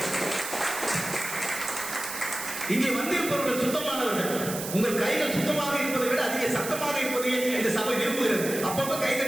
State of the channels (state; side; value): noise; right; hiss, 7 dB below the sound